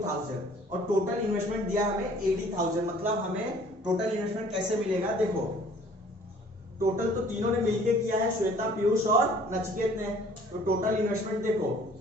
और टोटल इन्वेस्टमेंट दिया हमें 80,000। मतलब हमें टोटल इन्वेस्टमेंट कैसे मिलेगा, देखो टोटल तो तीनों ने मिलके किया है, श्वेता, पीयूष और नचिकेत ने। तो टोटल इन्वेस्टमेंट देखो,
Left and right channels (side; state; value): both; normal; correlation 0.54